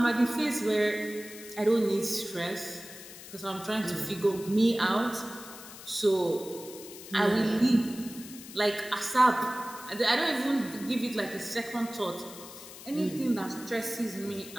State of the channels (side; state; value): left; noise; hiss, 15 dB below the sound